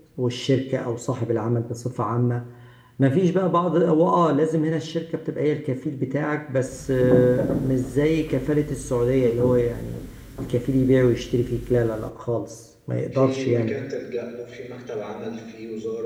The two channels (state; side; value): identical; both; correlation 1.00